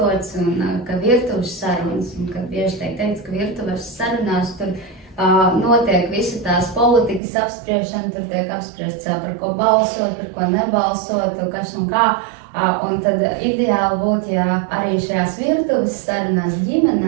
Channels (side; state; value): left; drops out; at 7.2 s